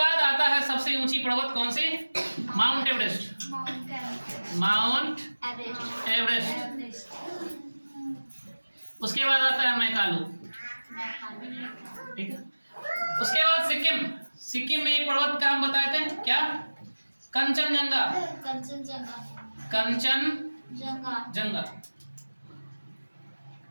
आता है सबसे ऊंची पर्वत कौन सी? Mount Everest, Mount Everest. उसके बाद आता है मैकालू, ठीक है। उसके बाद सिक्किम, सिक्किम में एक पर्वत का हम बताए थे क्या? कंचनजंगा, कंचनजंगा।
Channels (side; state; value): both; inverted; correlation -1.00